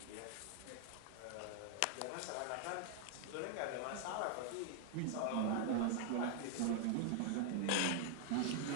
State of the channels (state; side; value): different; both; correlation 0.00